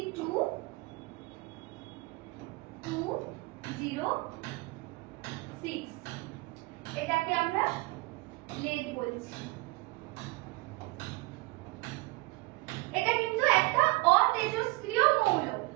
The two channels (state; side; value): quieter; left; 22.9 dB